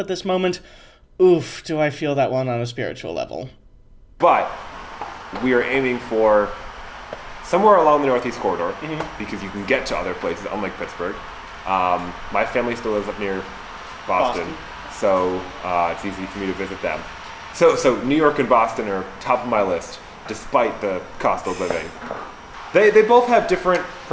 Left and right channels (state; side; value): identical; both; correlation 1.00